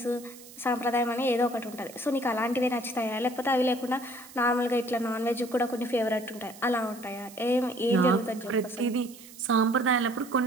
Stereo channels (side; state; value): right; noise; hiss, 19 dB below the sound